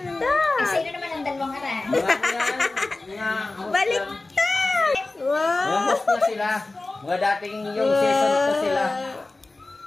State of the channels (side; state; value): right; quieter; 3.2 dB